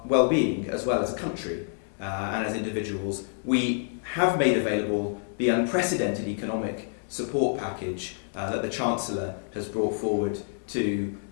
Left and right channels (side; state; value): right; silent; digital silence